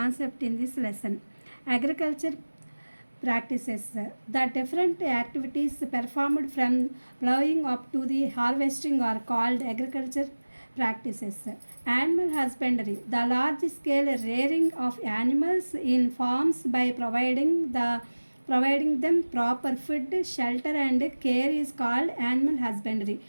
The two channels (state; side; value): inverted; both; correlation -1.00